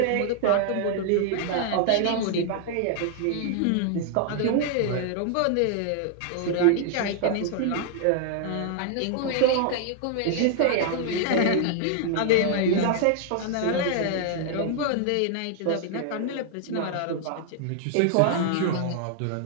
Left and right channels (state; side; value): different; both; correlation -0.01